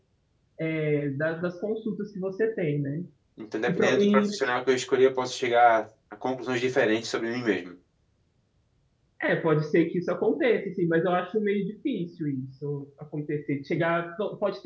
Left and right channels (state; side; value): identical; both; correlation 1.00